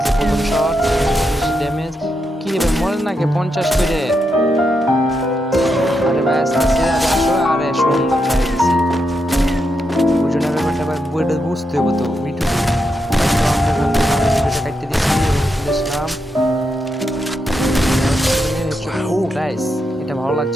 প্রথম শট, ড্যামেজ কি রে মরে নাকি 50 করে। আরে ভাই আসছে, আরে আসো, আরে সুন্দর মেরে দিছি। বুঝুন ব্যাপারটা ভাই, বইটা বুঝতে হবে তো ভিডিও। আমরা কাটতে দিয়েছি এবং দেখলাম। ও গাইস, এটা ভালো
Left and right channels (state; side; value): normal; both; correlation 0.83